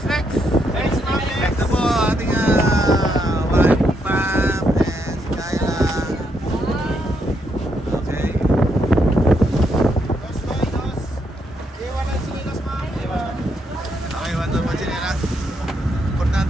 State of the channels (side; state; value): both; normal; correlation 0.77